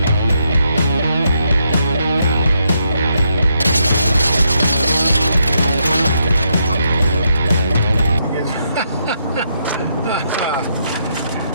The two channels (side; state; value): both; inverted; correlation -0.78